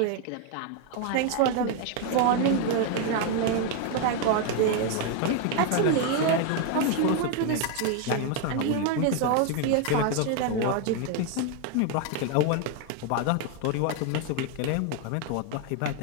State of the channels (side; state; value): both; different; correlation 0.01